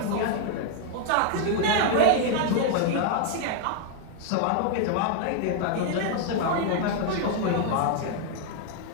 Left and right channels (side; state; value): both; different; correlation 0.00